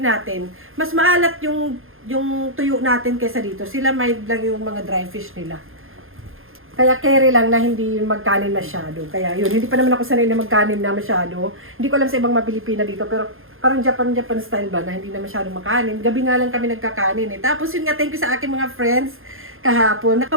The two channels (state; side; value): late; left; 0.60 ms